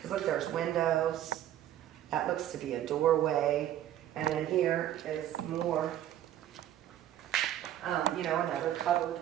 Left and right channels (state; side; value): quieter; left; 11.9 dB